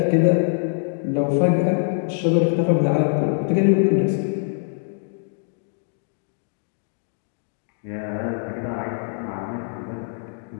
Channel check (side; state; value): right; silent; digital silence